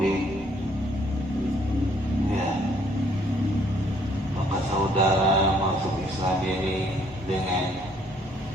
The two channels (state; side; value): normal; both; correlation 0.64